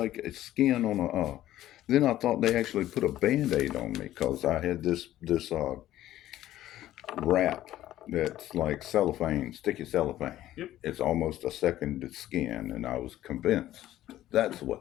it's skin on a. Then I thought they actually put a Band-Aid on me because I had this wrap that's like cellophane, sticky cellophane. Yep. It's almost a second skin, and I was convinced that's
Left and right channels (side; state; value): right; quieter; 13.7 dB